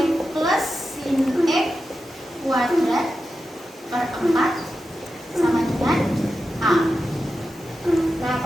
plus sin X kuadrat per 4 sama dengan A. Nah,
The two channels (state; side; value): normal; both; correlation 0.90